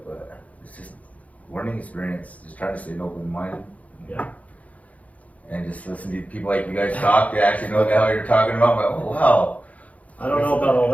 but it's just learning experience. Just trying to stay open minded. Yeah. And just listen to people like you guys talk. They actually know what the hell you're talking about. I'm like, oh wow. I don't know about all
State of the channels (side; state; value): right; late; 0.069 ms